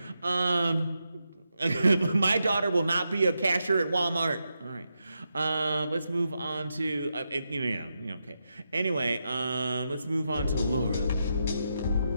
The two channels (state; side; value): inverted; both; correlation -0.86